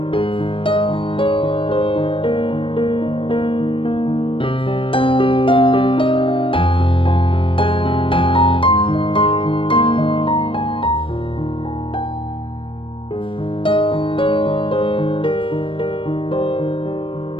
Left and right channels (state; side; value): late; right; 0.25 ms